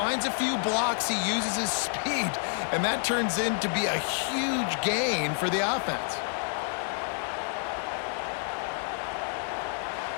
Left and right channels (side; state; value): right; silent; 59 dB below the other